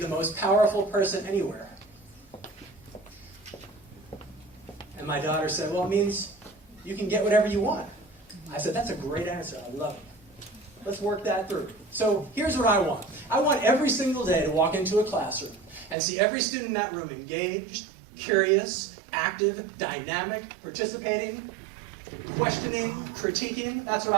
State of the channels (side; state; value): left; drops out; at 16.0 s